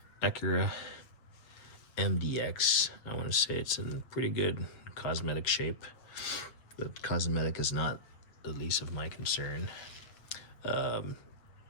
Acura MDX. I want to say it's in pretty good cosmetic shape. The cosmetic is not the least of my concern.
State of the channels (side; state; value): right; late; 8.2 ms